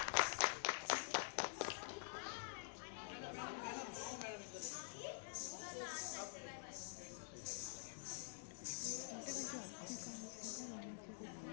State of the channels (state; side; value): silent; right; digital silence